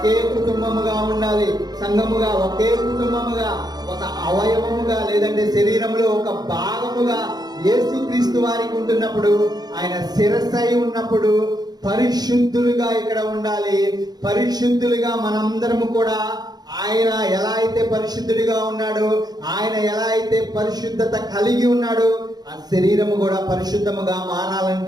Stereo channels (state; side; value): late; left; 0.19 ms